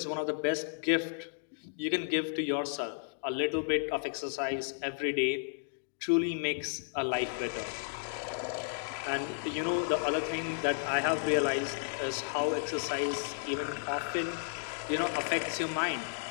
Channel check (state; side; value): silent; right; digital silence